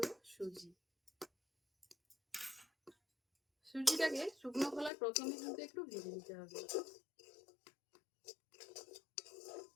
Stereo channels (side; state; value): right; drops out; at 4.9 s